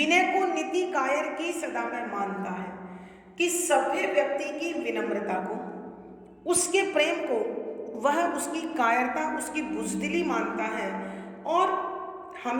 को नीति कायर की सदा में मानता है, कि सभ्य व्यक्ति की विनम्रता को, उसके प्रेम को वह उसकी कायरता, उसकी बुजदिली मानता है और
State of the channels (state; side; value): identical; both; correlation 1.00